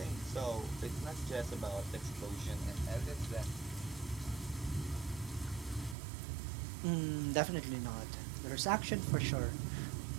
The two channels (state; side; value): drops out; left; at 6.0 s